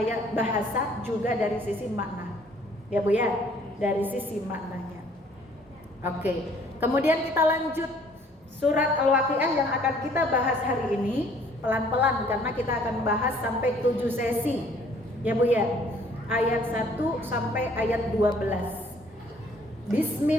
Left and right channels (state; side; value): normal; both; correlation 0.59